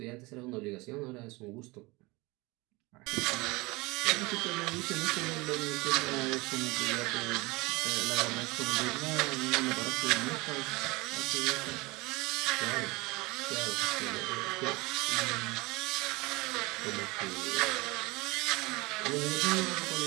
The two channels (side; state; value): left; quieter; 23.7 dB